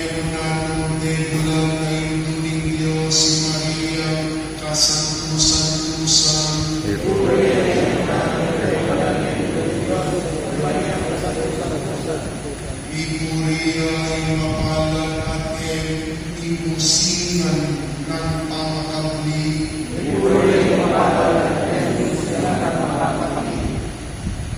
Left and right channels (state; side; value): identical; both; correlation 1.00